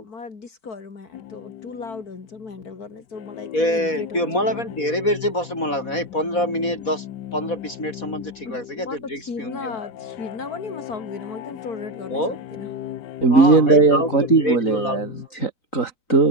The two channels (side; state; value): right; late; 4.1 ms